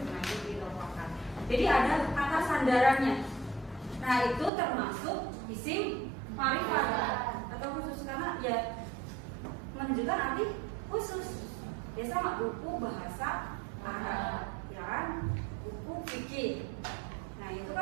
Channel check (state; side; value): drops out; left; at 4.5 s